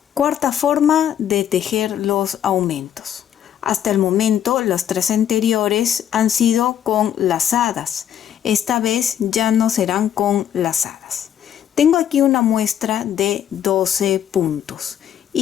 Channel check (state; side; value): quieter; right; 9.9 dB